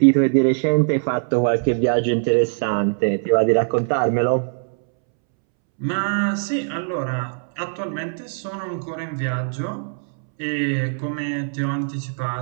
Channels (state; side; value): silent; left; 65 dB below the other